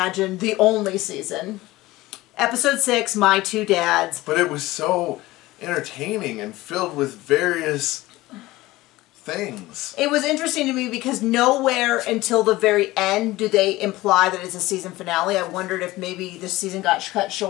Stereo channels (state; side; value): quieter; right; 18.5 dB